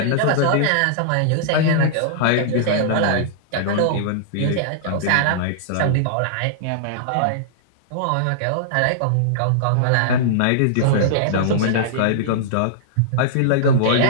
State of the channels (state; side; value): different; both; correlation -0.02